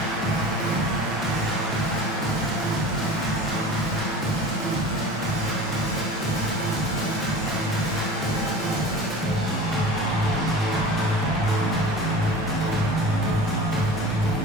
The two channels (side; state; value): both; normal; correlation 0.37